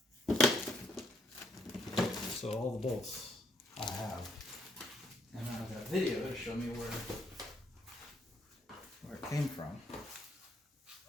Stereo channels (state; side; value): normal; both; correlation 0.72